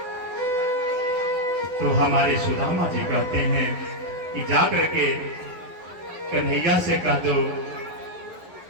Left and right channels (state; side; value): late; left; 11 ms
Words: तो हमारे सुदामा जी कहते हैं कि जाकर के कन्हैया से कह दो